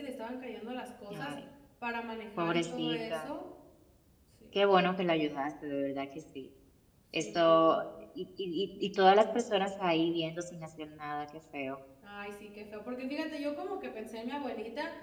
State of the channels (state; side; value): identical; both; correlation 1.00